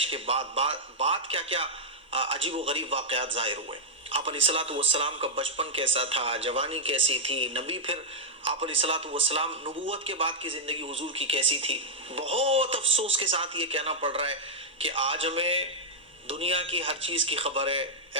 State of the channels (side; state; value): both; normal; correlation -0.07